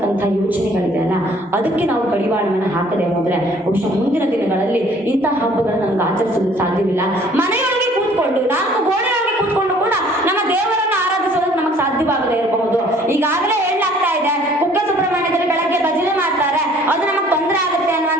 ಯೋಚನೆಗಳಿದೆಯಲ್ಲ, ಅದಕ್ಕೆ ನಾವು ಕಡಿವಾಣವನ್ನು ಹಾಕದೆ ಹೋದ್ರೆ ಬಹುಶಃ ಮುಂದಿನ ದಿನಗಳಲ್ಲಿ ಇಂತಹ ಹಬ್ಬಗಳನ್ನ ನಮ್ಗೆ ಆಚರಿಸಲು ಸಾಧ್ಯವಿಲ್ಲ. ಮನೆಯೊಳಗೆ ಕೂತ್ಕೊಂಡು 4 ಗೋಡೆಯೊಳಗೆ ಕೂತ್ಕೊಂಡು ಕೂಡ ನಮ್ಮ ದೇವರನ್ನ ಆರಾಧಿಸೋದಕ್ಕೆ ನಮಗೆ ಸಾಧ್ಯವಾಗದೇ ಇರಬಹುದು. ಈಗಾಗಲೇ ಹೇಳಲಾಗ್ತಾ ಇದೆ, ಕುಕ್ಕೆ ಸುಬ್ರಹ್ಮಣ್ಯದಲ್ಲಿ ಬೆಳಗ್ಗೆ ಭಜನೆ ಮಾಡ್ತಾರೆ, ಅದು ನಮಗೆ ತೊಂದರೆ ಆಗುತ್ತೆ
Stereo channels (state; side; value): normal; both; correlation 0.56